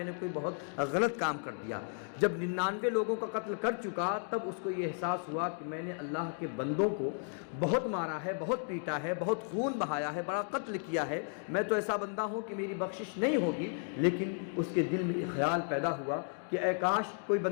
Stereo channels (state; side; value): silent; right; 55 dB below the other